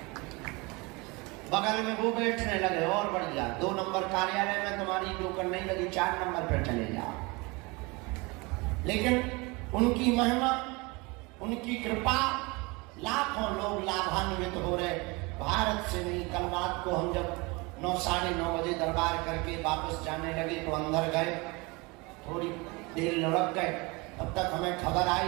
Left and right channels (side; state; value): left; quieter; 26.1 dB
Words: बगल में वो बैठने लगे और बढ़ गया। 2 नंबर कार्यालय में तुम्हारी नौकर नहीं लगी, 4 नंबर पर चले जाओ। लेकिन उनकी महिमा, उनकी कृपा, लाखों लोग लाभान्वित हो रहे। भारत से नहीं, कल रात को हम जब 9 साढ़े 9 बजे दरबार करके वापस जाने लगे तो अंदर गए, थोड़ी देर लुढ़क गए। तब तक हमें खबर